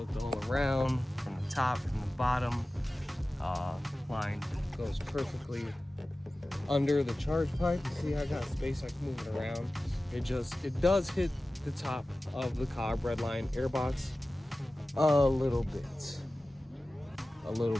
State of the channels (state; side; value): normal; both; correlation 0.96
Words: all around, from the top, from the bottom. Line goes perfectly under the charge pipe. You see, I got space, I can move it around. It does hit the top of the Cobb Redline airbox a little bit,